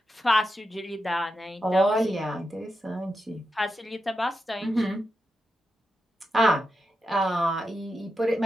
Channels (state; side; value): normal; both; correlation 0.88